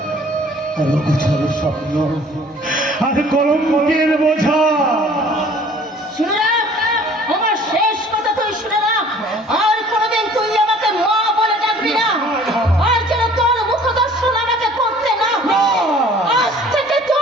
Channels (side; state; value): both; normal; correlation 0.52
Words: আর অগোছালো স্বপ্ন আর কলঙ্কের বোঝা। শুনে রাখ, আমার শেষ কথা তুই শুনে রাখ। আর কোনোদিন তুই আমাকে মা বলে ডাকবি না। আর যেন তোর মুখ দর্শন আমাকে করতে না হয়। আজ থেকে